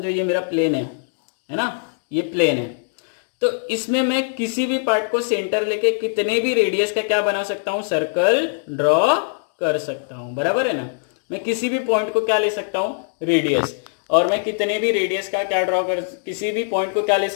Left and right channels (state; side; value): silent; right; digital silence